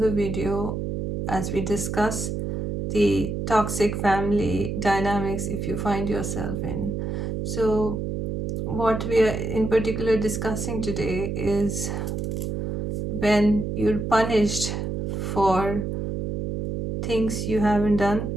video as we discuss the toxic family dynamics if you find yourself in. So what we are in particular discussing today is when you're punished for things you haven't done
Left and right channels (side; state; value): right; noise; hum, 3 dB below the sound